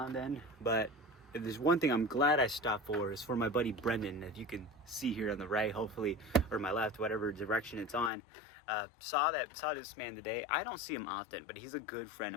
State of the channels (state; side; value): drops out; right; at 8.1 s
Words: and then. But if there's one thing I'm glad I stopped for, is for my buddy Brendan, that you can see here on the right, hopefully, or my left, whatever direction it's on. Saw this man today. I don't see him often, but he's a good friend